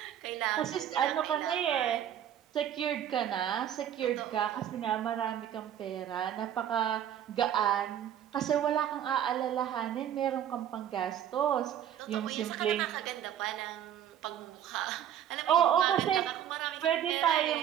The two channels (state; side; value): quieter; left; 10.2 dB